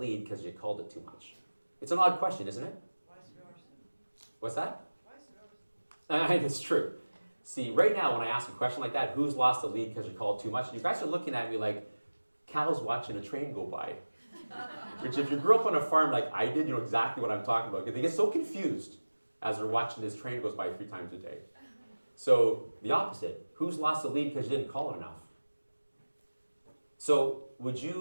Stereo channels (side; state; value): both; inverted; correlation -1.00